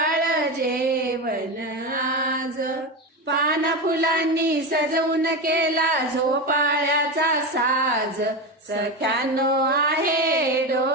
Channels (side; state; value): both; normal; correlation 0.18